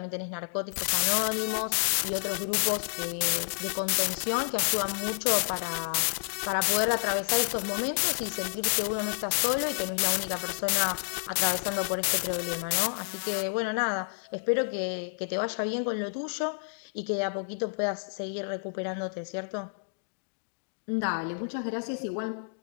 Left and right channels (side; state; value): right; silent; digital silence